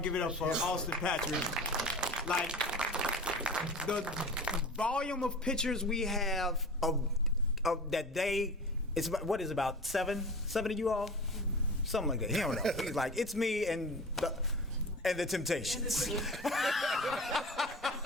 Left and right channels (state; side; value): normal; both; correlation 0.35